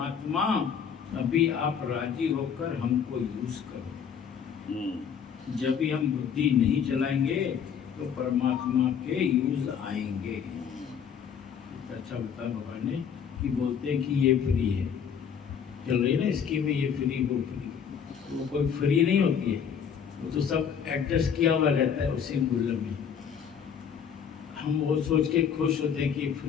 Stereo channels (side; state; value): right; quieter; 7.4 dB